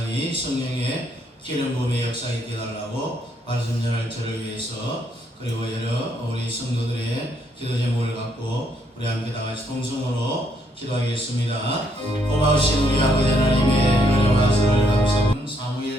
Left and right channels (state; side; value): normal; both; correlation 0.72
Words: 성령의 기름 부음의 역사 있게 해달라고 말씀 전할 저를 위해서 그리고 여러 우리 성도들의 기도 제목을 갖고 우리 함께 다 같이 통성으로 기도하겠습니다. 고마우신 우리 아버지 하나님의 은혜와 사랑을 감사합니다.